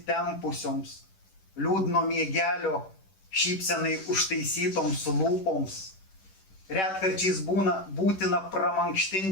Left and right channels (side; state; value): right; late; 10 ms